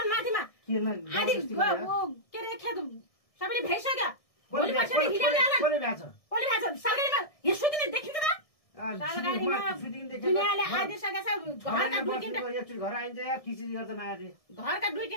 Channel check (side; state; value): right; late; 1.6 ms